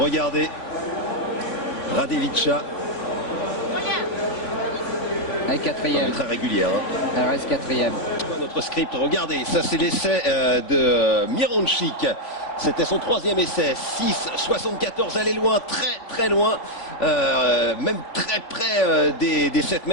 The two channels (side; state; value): right; late; 3.5 ms